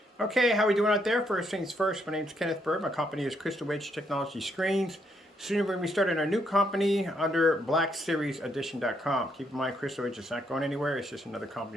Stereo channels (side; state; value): both; normal; correlation 0.74